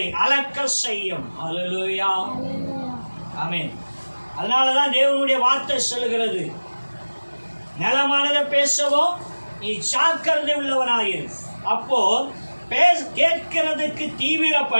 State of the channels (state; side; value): inverted; both; correlation -1.00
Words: அளக்க செய்யும். அல்லேலூயா. ஆமென். அதனாலதான் தேவனுடைய வார்த்தை சொல்லுகிறது, நலமானதை பேசவோ நீ ஜாக்கிரதை உள்ளவனாயிரு. அப்போ கேட்கிறதுக்கு